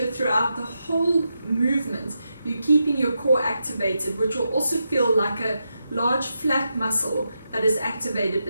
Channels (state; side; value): inverted; both; correlation -0.86